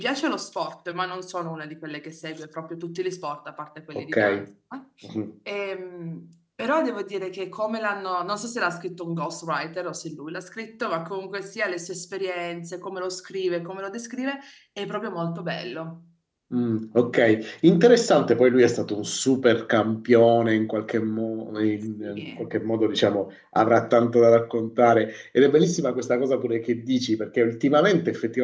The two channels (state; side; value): identical; both; correlation 1.00